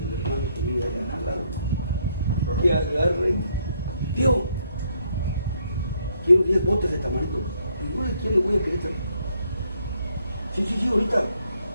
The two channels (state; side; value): inverted; both; correlation -0.71